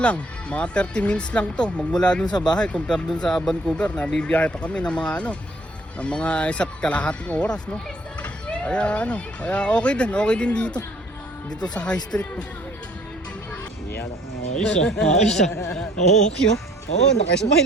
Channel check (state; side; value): normal; both; correlation 0.59